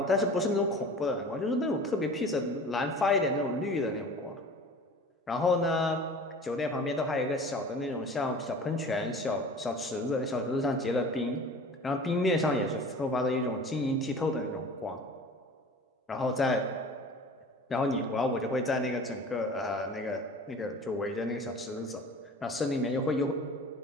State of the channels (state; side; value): normal; both; correlation 0.41